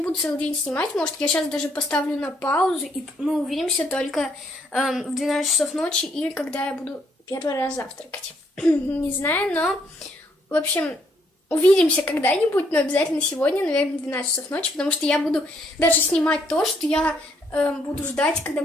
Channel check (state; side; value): normal; both; correlation 0.70